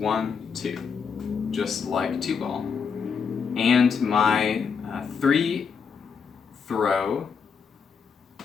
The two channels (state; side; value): quieter; right; 6.1 dB